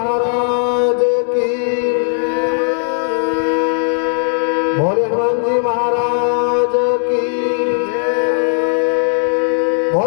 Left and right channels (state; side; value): silent; right; 64 dB below the other